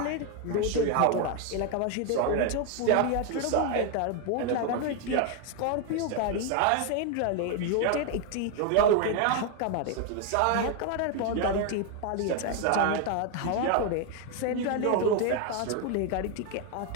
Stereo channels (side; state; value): both; different; correlation 0.01